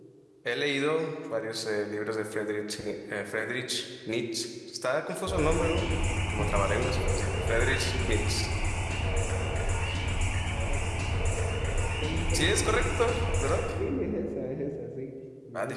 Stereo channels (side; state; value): both; identical; correlation 1.00